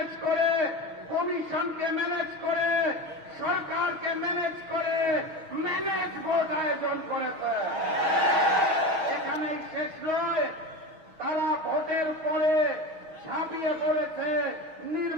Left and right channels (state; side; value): late; left; 6.3 ms